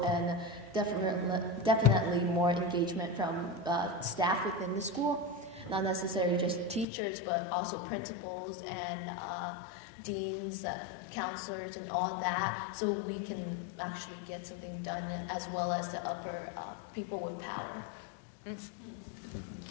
and definitely more engagement from staff within the school. Not necessarily just teachers, but also principals and deans, counselors, and all that, so we can actually get something done, as well as the upper people with power. Mm-hmm.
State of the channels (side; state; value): right; drops out; at 6.9 s